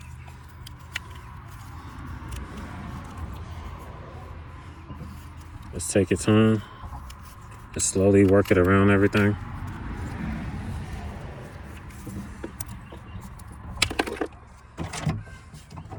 Just take your time. Just slowly work it around everything.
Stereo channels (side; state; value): both; identical; correlation 1.00